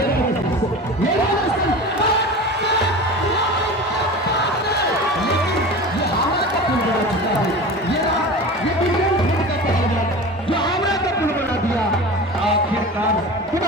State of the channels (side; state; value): both; normal; correlation 0.33